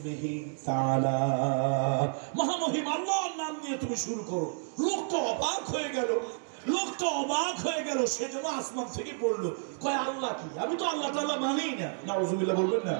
তাআলা, মহামহিম আল্লাহর নাম নিয়ে তুমি শুরু করো। লোকটা অবাক হয়ে গেল, সেজন্য আসমান থেকে পড়লো, কয় আল্লাহ কি? আমি তো আল্লাহ তাআলা মানি না। নাউজুবিল্লাহ বলবেন না?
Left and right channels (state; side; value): silent; left; digital silence